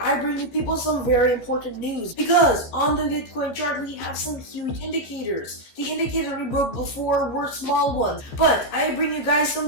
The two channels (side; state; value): right; late; 14 ms